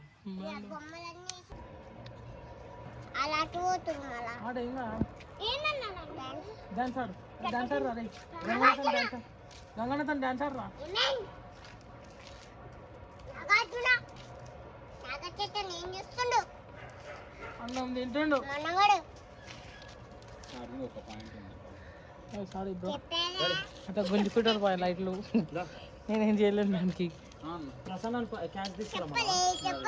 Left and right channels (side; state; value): both; identical; correlation 1.00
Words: డాన్స్ ఆడు, డాన్స్ ఆడు రా, గంగన్నతో డాన్స్ ఆడు రా. అన్నం తింటుండు. సారీ బ్రో, అట్లా గుంజుకుంటారు పోయి లైట్లు. నేనేం చేయలేను దానికి. ప్రసన్న క్యాష్ తీసుకురా